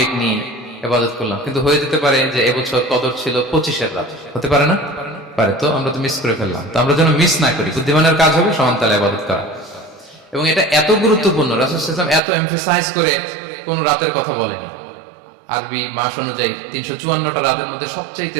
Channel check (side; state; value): left; drops out; at 12.2 s